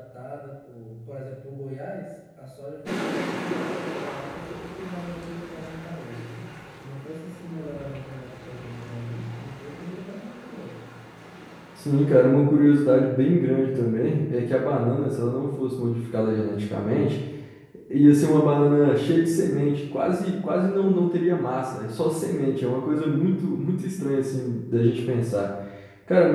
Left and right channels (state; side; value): identical; both; correlation 1.00